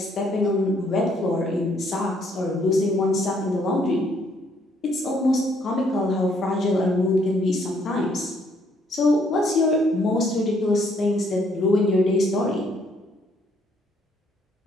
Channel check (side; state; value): both; normal; correlation 0.68